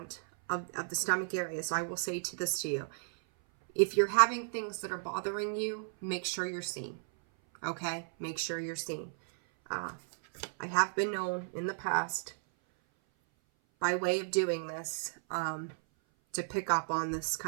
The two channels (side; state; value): left; silent; 55 dB below the other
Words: of the stomach area. So I will say this to you. If you're having things that are bothering you, make sure you're seen. Okay? Make sure you're seen. I have been known in the past, by way of doing this, to pick up on this